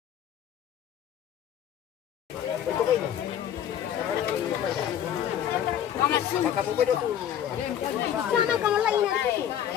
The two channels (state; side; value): quieter; right; 10.0 dB